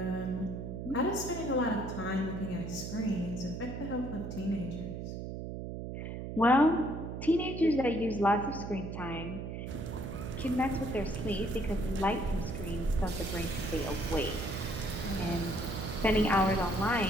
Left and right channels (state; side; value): noise; right; hum, 6 dB below the sound